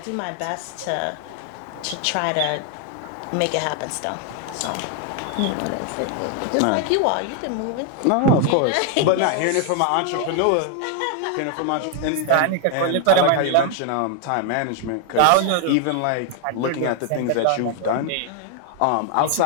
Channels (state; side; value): different; both; correlation 0.00